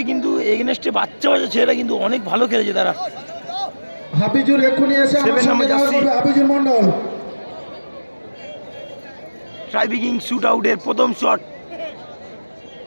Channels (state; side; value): inverted; both; correlation -1.00